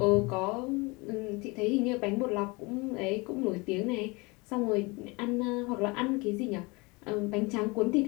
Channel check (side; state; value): right; quieter; 26.2 dB